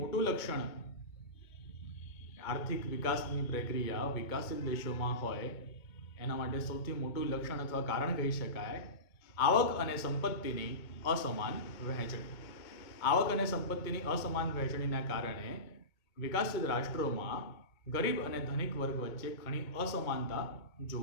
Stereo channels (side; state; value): right; late; 2.2 ms